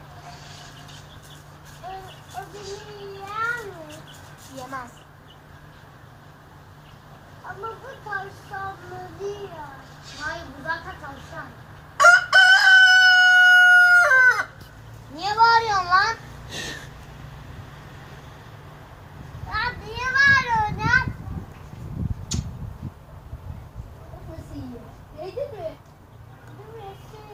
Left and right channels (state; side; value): identical; both; correlation 1.00